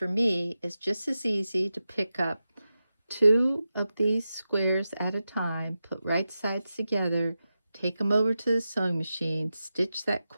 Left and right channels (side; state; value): both; inverted; correlation -0.92